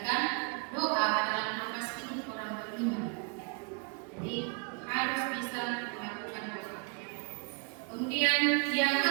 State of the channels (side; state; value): left; quieter; 34.7 dB